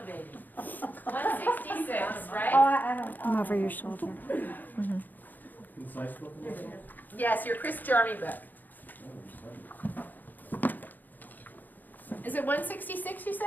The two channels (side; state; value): right; late; 0.086 ms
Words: 166, Oh, right? I don't. I'm over your shoulder. Concise book? Yes, your Chris Jarmy book. Is it 166 you